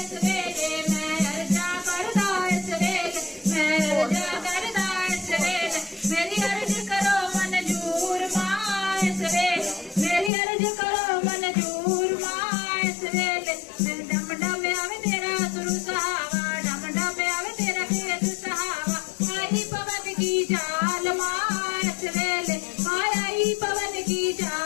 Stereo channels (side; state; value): right; drops out; at 10.3 s